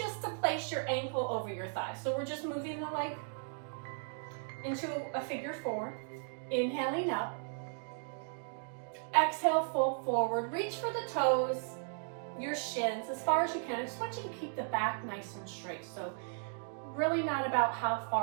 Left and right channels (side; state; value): left; silent; digital silence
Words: to place your ankle over your thigh. So we're just moving the leg into a figure four. Inhaling up. Exhale, fold forward. Reach for the toes, your shins as far as you can. I just want you to keep the back nice and straight. So really not about how